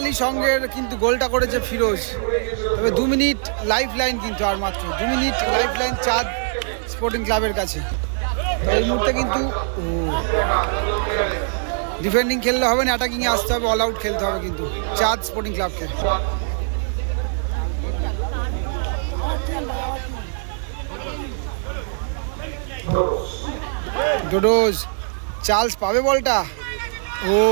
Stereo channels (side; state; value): left; silent; digital silence